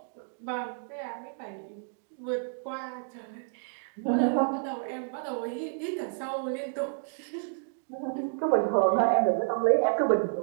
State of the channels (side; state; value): left; silent; 58 dB below the other